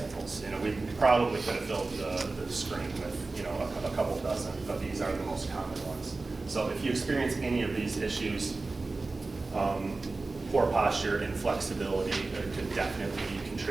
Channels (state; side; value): quieter; left; 3.5 dB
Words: You know, we probably could have filled the screen with, you know, a couple dozen, but these are the most common ones. So if you experience any of these issues, poor posture, inflexibility could definitely be